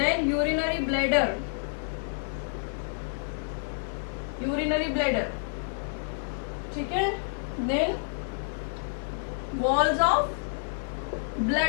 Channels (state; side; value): silent; right; digital silence